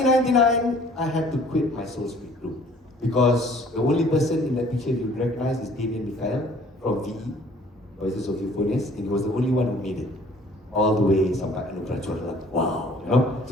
I had to quit my Soul Speak group because the only person in that picture you would recognize is Damien Mikhail from VE, Voices of Euphonious, and he was the only one who made it all the way sampai Anugerah. Wow, you know.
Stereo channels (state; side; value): normal; both; correlation 0.55